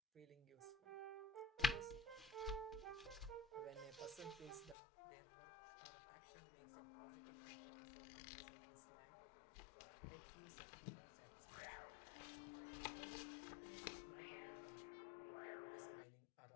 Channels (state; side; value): drops out; right; at 4.8 s